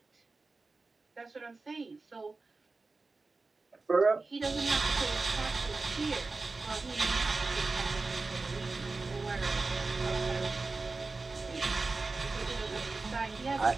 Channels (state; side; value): quieter; left; 3.7 dB